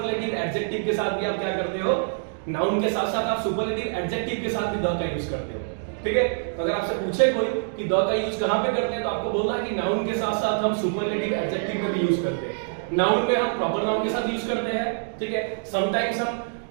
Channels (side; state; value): left; silent; digital silence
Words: एडजेक्टिव के साथ भी आप क्या करते हो, नाउन के साथ साथ आप सुपरलेटिव एडजेक्टिव के साथ भी द का यूज करते हो, ठीक है। तो अगर आपसे पूछे कोई कि द का यूज कहां पे करते हैं तो आपको बोलना है कि नाउन के साथ साथ हम सुपरलेटिव एडजेक्टिव में भी यूज करते हैं। नाउन में हम प्रॉपर नाउन के साथ यूज करते हैं, ठीक है। समटाइम्स हम